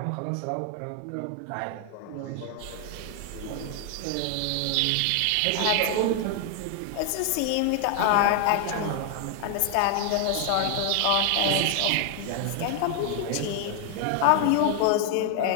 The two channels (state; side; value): different; both; correlation 0.00